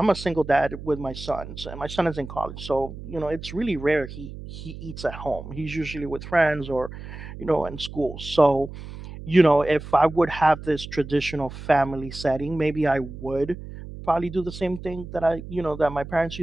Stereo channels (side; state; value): right; noise; hum, 12 dB below the sound